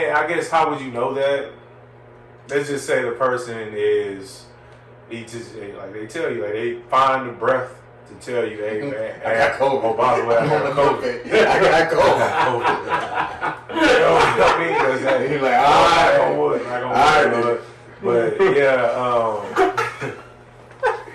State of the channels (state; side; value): identical; both; correlation 1.00